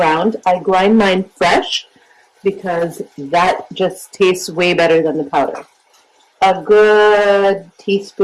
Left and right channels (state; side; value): identical; both; correlation 1.00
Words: I grind mine fresh because that just tastes way better than the powder. A good